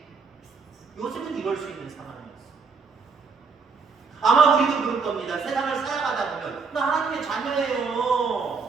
요셉은 이럴 수 있는 상황이었어요. 아마 우리도 그럴 겁니다. 세상을 살아가다 보면 나 하나님의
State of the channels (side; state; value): left; quieter; 4.9 dB